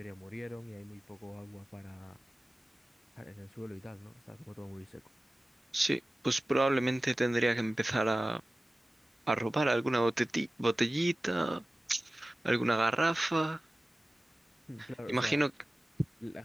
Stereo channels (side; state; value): both; normal; correlation 0.97